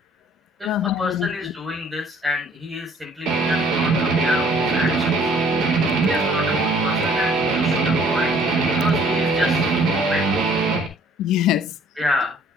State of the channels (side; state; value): both; normal; correlation 0.57